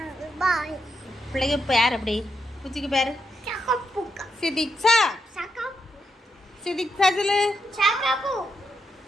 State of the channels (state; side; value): normal; both; correlation 0.82